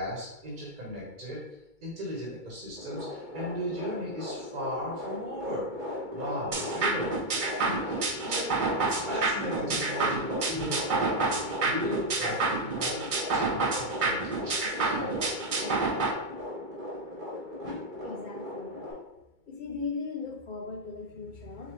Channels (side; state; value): left; late; 2.2 ms